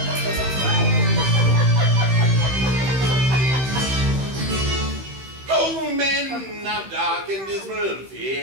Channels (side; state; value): left; late; 15 ms